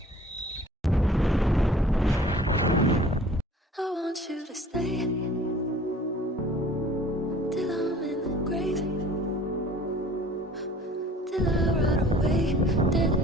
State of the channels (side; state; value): both; normal; correlation 0.50